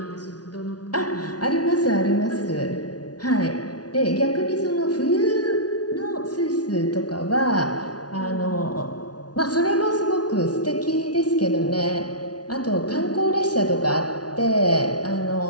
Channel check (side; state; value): right; late; 0.69 ms